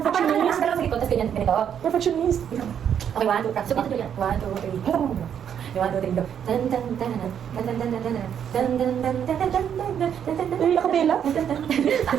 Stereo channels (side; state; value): left; quieter; 8.7 dB